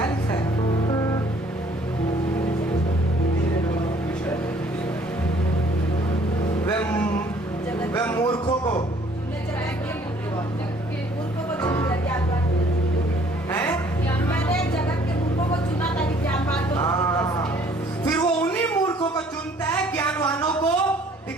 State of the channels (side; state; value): both; normal; correlation 0.59